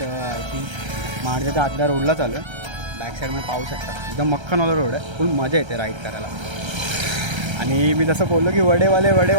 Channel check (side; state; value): left; late; 1.3 ms